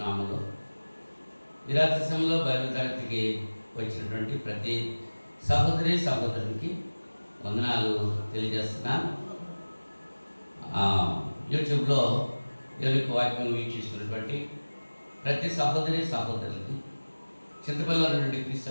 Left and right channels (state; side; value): inverted; both; correlation -1.00